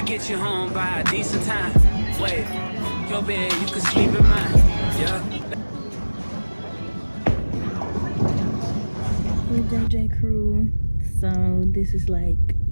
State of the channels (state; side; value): inverted; both; correlation -1.00